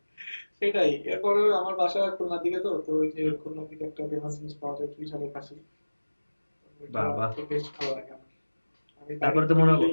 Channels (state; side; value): inverted; both; correlation -1.00